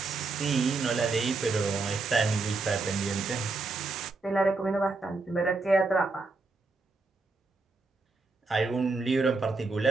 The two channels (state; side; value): quieter; left; 3.8 dB